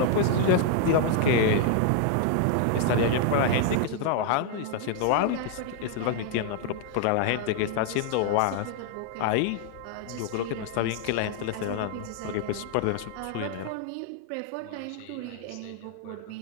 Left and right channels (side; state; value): both; different; correlation 0.00